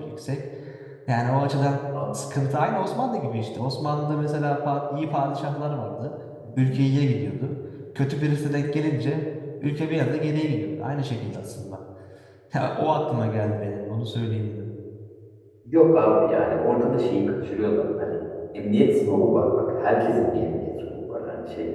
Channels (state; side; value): identical; both; correlation 1.00